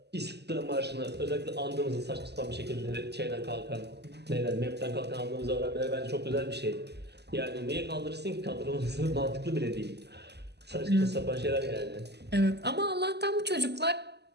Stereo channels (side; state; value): left; late; 0.49 ms